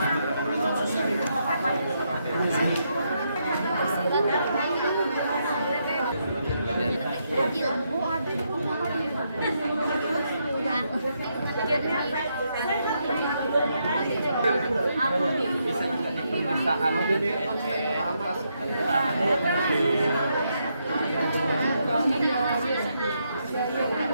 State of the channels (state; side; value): inverted; both; correlation -0.79